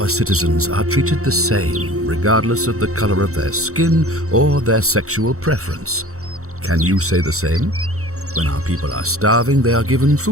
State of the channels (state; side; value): late; left; 0.64 ms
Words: citizens are treated the same, regardless of the color of their skin or their sexual preference. Can you say the same? When our people are starving, they are given